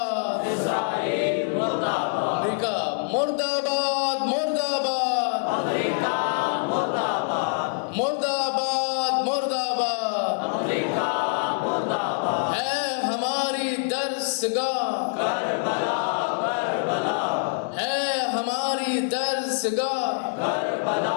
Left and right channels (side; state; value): right; silent; digital silence